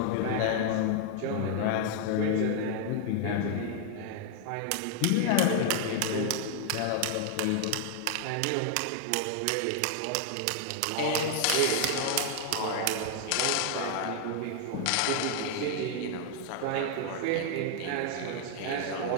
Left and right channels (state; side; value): different; both; correlation 0.00